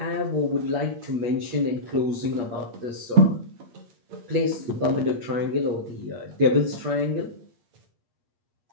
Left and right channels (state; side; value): late; left; 8.4 ms